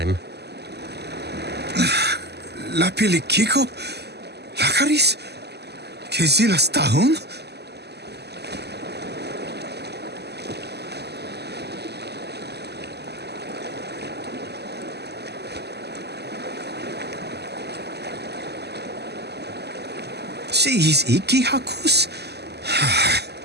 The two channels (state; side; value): late; left; 0.49 ms